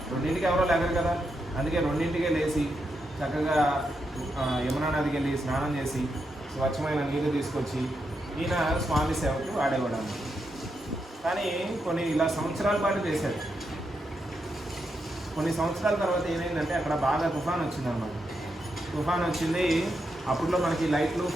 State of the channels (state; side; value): normal; both; correlation 0.83